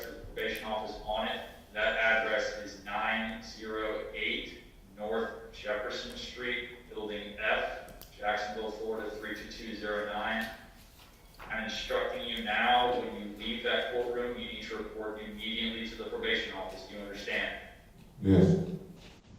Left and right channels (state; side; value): identical; both; correlation 1.00